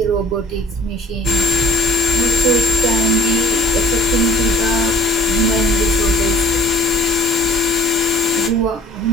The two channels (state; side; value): normal; both; correlation 0.52